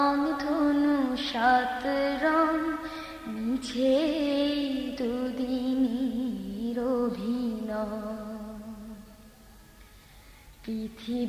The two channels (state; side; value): identical; both; correlation 1.00